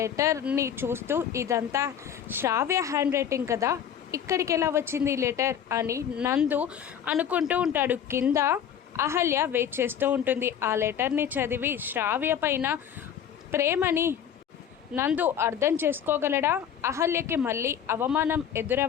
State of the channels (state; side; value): quieter; right; 8.9 dB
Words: చూస్తూ, ఇదంతా శ్రావ్య హ్యాండ్ రైటింగ్ కదా, ఇక్కడికి ఎలా వచ్చింది ఈ లెటర్ అని నందు అనుకుంటూ ఉంటాడు. కింద అహల్య వెయిట్ చేస్తూ ఉంటుంది. ఆ లెటర్ని చదివి శ్రావ్య పైన ప్రేమని నందు అర్థం చేసుకోగలడా? అహల్యకి మళ్ళీ అవమానం